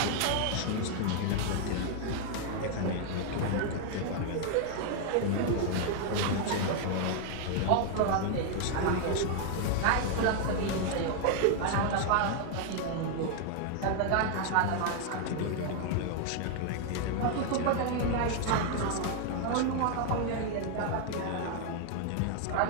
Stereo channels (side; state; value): both; different; correlation 0.00